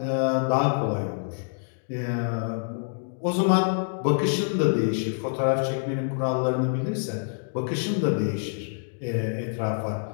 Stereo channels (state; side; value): silent; right; digital silence